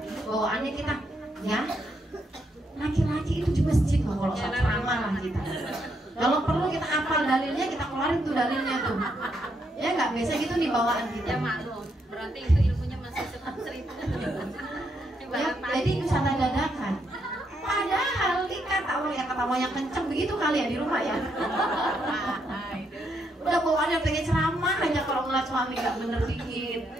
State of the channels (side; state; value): both; normal; correlation 0.77